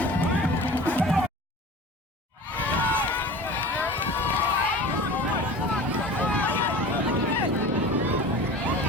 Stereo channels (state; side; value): normal; both; correlation 0.37